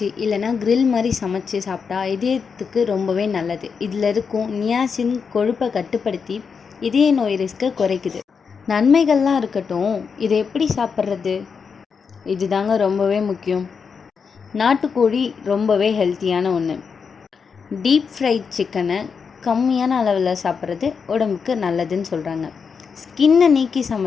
இல்லைனா கிரில் மாதிரி சமைச்சு சாப்பிட்டா இதயத்துக்கு ரொம்பவே நல்லது. இதில் இருக்கும் நியாசின் கொழுப்பை கட்டுப்படுத்தி இதய நோய் ரிஸ்க்கை குறைக்குது. நன்மைகள்லாம் இருக்கட்டும், இதை எப்படி சாப்பிட்றது? இதுதாங்க ரொம்பவே முக்கியம். நாட்டுக்கோழி ரொம்பவே ஹெல்த்தியான ஒன்று. டீப் ஃப்ரைட் சிக்கனை கம்மியான அளவில் சாப்பிட்றது உடம்புக்கு நல்லதுன்னு சொல்கிறாங்க. ஸ்கின்னை நீக்கி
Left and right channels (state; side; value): quieter; right; 5.9 dB